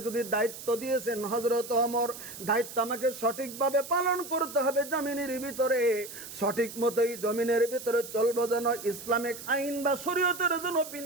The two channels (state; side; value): noise; right; hiss, 12 dB below the sound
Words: যদি দায়িত্ব দিয়েছেন হযরত ওমর, দায়িত্ব আমাকে সঠিকভাবে পালন করতে হবে। জমিনের ভিতরে সঠিক মতোই জমিনের ভিতরে চলবো, যেন ইসলামিক আইন বা শরীয়তের জন্য